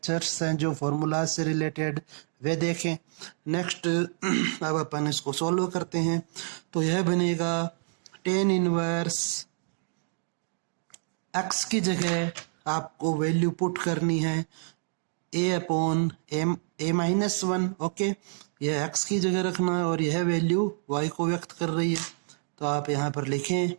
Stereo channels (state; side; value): silent; left; digital silence